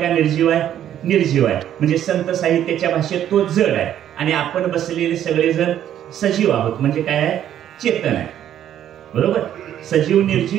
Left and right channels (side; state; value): left; quieter; 10.8 dB